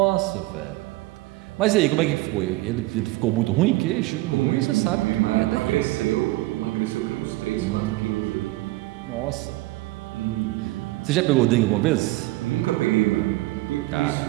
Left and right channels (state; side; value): quieter; left; 19.5 dB